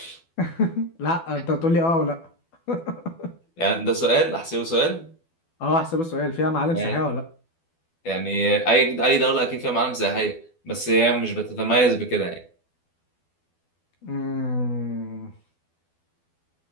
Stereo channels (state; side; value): late; right; 12 ms